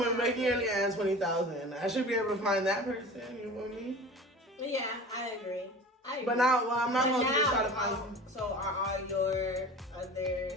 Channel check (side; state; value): both; normal; correlation 0.37